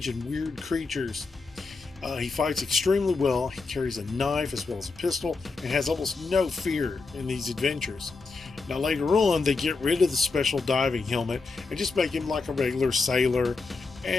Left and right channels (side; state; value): right; quieter; 4.1 dB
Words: and weird creatures. He fights extremely well. He carries a knife as well as a pistol and has almost no fear in these adventures. Now later on, they get rid of the special diving helmet and just make him like a regular sailor,